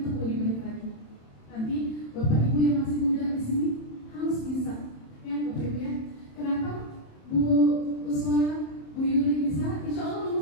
untuk lebih baik lagi. Nanti Bapak Ibu yang masih muda di sini harus bisa, ya Bapak Ibu ya. Kenapa Bu Uswa, Bu Yuli bisa? Insya Allah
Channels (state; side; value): late; right; 27 ms